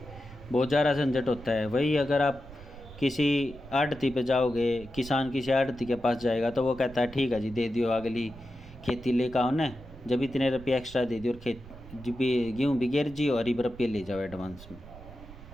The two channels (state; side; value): noise; right; rumble, 17 dB below the sound